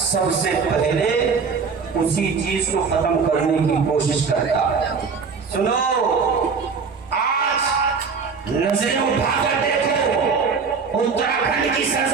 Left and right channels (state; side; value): quieter; left; 5.4 dB